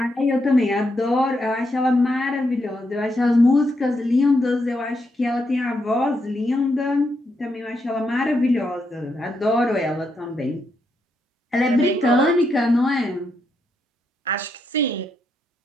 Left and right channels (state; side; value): normal; both; correlation 0.80